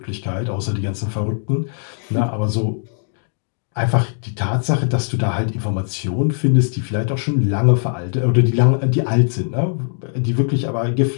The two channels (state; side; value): silent; right; 66 dB below the other